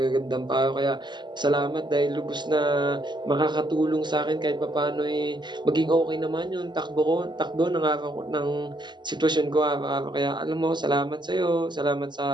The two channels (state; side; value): late; left; 0.22 ms